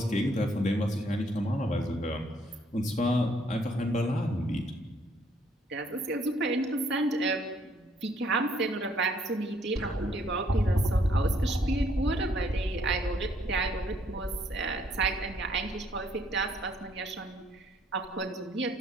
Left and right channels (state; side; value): normal; both; correlation 0.66